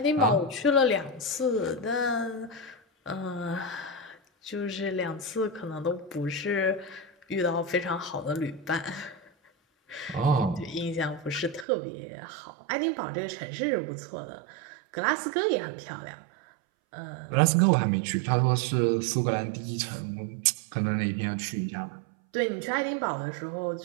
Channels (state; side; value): drops out; left; at 11.7 s